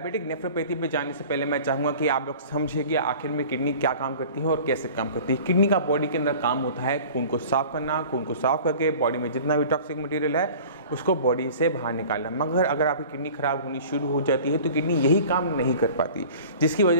नेफ्रोपैथी पे जाने से पहले मैं चाहूँगा कि आप लोग समझिए कि आखिर में किडनी क्या काम करती है और कैसे काम करती है। किडनी का बॉडी के अंदर काम होता है खून को साफ करना, खून को साफ करके बॉडी में जितना भी टॉक्सिक मटेरियल है उसको बॉडी से बाहर निकालना। मगर अगर आपकी किडनी खराब होनी शुरू हो जाती है तो किडनी यही काम नहीं कर पाती, जिसकी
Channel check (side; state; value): both; inverted; correlation -0.43